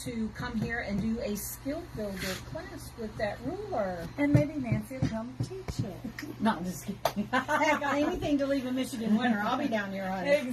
come here and do a skill builder class with that ruler. And maybe Nancy will come teach it. No, I'm just kidding. Heck, anything to leave in Michigan winter, I'll be down here, honey.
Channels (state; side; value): identical; both; correlation 1.00